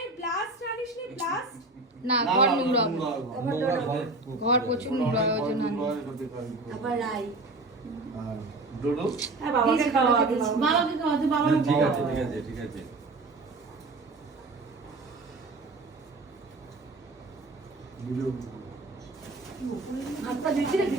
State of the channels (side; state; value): left; quieter; 3.1 dB